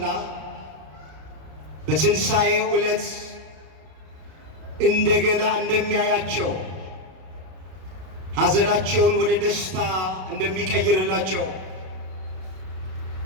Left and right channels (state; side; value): late; left; 32 ms